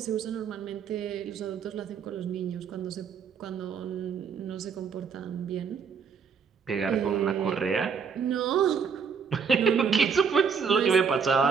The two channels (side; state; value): left; quieter; 6.3 dB